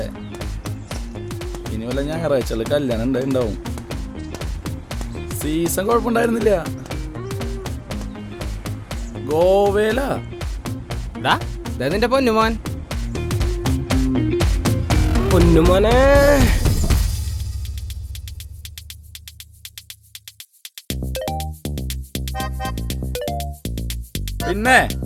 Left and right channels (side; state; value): both; identical; correlation 1.00